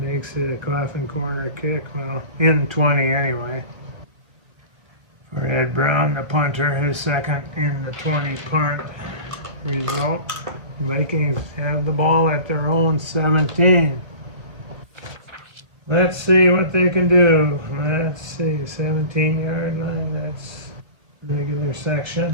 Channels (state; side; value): late; left; 1.3 ms